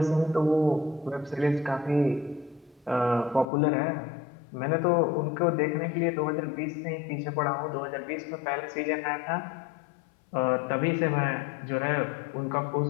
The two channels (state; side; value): drops out; right; at 3.5 s